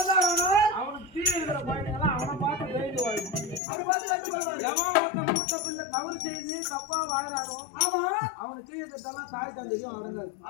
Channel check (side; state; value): right; drops out; at 3.6 s